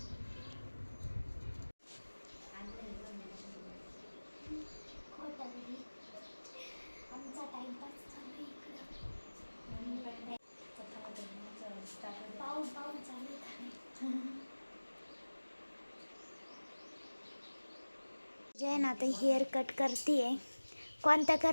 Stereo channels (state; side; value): inverted; both; correlation -1.00